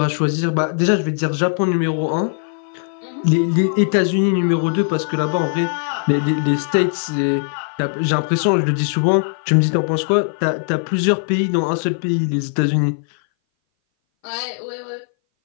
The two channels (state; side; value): silent; right; 60 dB below the other